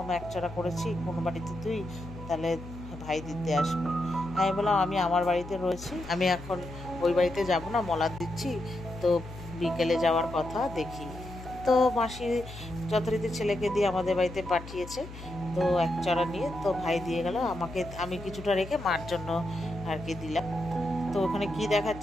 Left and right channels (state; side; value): noise; left; hum, 14 dB below the sound